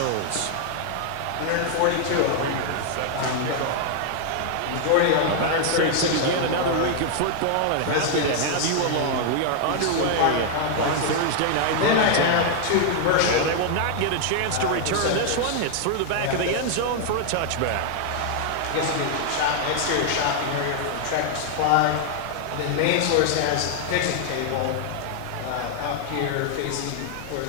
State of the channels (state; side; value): different; both; correlation 0.00